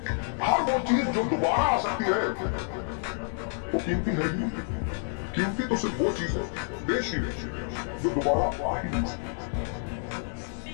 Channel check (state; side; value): silent; right; digital silence